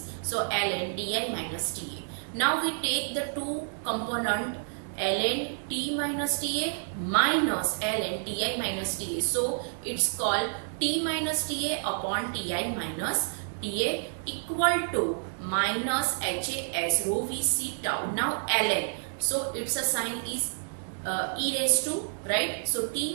So ln Ti minus TA. Now we take the two component ln T minus TA minus ln Ti minus TA. So it's called T minus TA upon Ti minus TA equal to minus HAS rho Vc tau. Now ln, so its a sign is e raised to, right? So T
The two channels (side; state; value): left; silent; digital silence